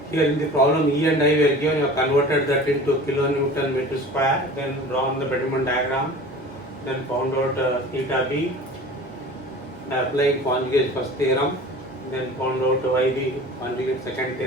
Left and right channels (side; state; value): both; normal; correlation 0.40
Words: Here in the problem E and I were given, you have converted that into kilonewton meter square, then drawn the Bending diagram, then found out theta B by applying conjugate first theorem, then found out YB conjugate second